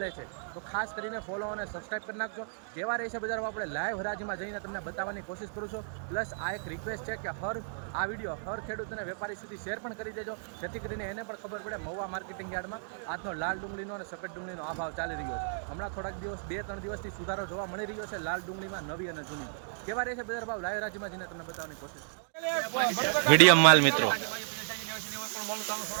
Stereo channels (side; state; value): left; silent; digital silence